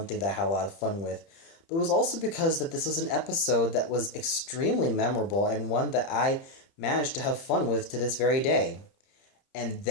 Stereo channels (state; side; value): late; right; 30 ms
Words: thing that I had a lot of fun with. But it was also because that this was an episode that was extremely memorable and one that I managed to have fun with to this very day. And